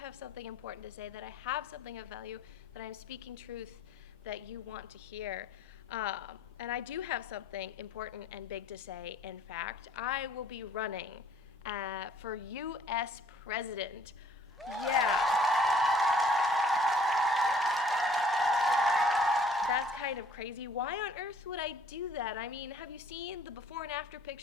something important to say, that I have something of value, that I'm speaking truth that you want to hear. And I do have something important and big to say. In fact, I will be running for U.S. President. Yeah. That's kind of crazy. Why on earth would I do that? I mean, have you seen the before and after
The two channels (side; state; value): both; normal; correlation 0.58